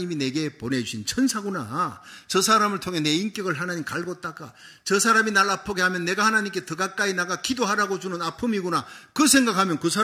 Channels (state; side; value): identical; both; correlation 1.00